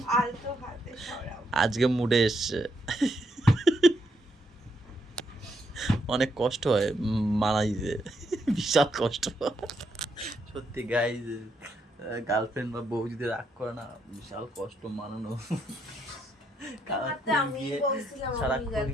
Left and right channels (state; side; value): normal; both; correlation 0.77